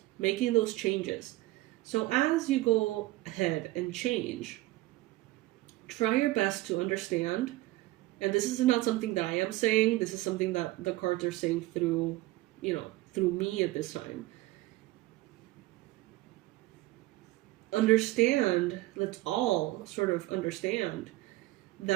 making those changes. So as you go ahead and change, try your best to understand. And this is not something that I am saying. This is something that the cards are saying through, through me at this time. Understand, let's all sort of understand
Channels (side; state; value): left; quieter; 18.3 dB